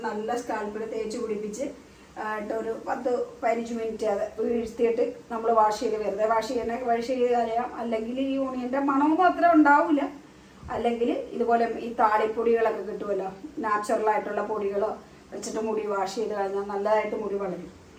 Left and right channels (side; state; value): both; identical; correlation 1.00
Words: നല്ല സ്കാൽപ്പിൽ തേച്ച് പിടിപ്പിച്ച് ഒരു 10-15 മിനിറ്റ് അത് വീഴ്ത്തിയിട്ട് നമ്മൾ വാഷ് ചെയ്ത് വെറുതെ വാഷ് ചെയ്ത് കളയാം. അല്ലെങ്കിൽ ഈ ഓണിയന്റെ മണമൊന്നും അത്ര ഉണ്ടാവില്ല. അല്ലെങ്കിൽ ഇതുപോലെ ഈ താളിപ്പൊടികളൊക്കെ കിട്ടുമല്ലോ, നാച്ചുറലായിട്ടുള്ള പൊടികളോ വെച്ചിട്ട് മുടി വാഷ് ചെയ്ത് കഴിഞ്ഞാൽ നല്ലതായിട്ട് മുടി വളരും.